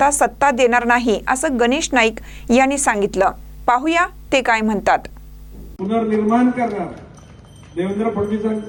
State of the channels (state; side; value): identical; both; correlation 1.00